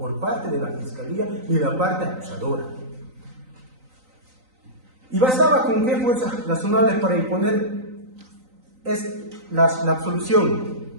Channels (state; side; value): late; left; 3.9 ms